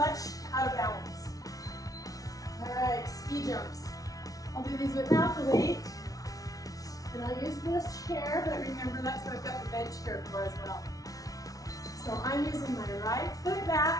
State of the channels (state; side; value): late; right; 0.18 ms